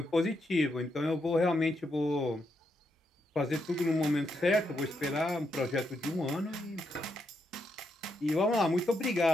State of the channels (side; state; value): both; normal; correlation 0.80